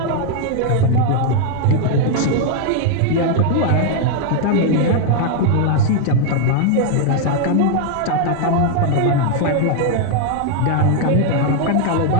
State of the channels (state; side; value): different; both; correlation 0.00